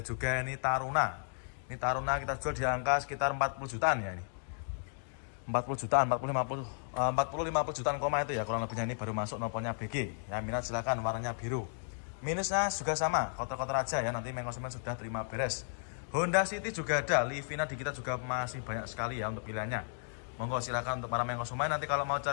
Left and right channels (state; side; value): silent; right; digital silence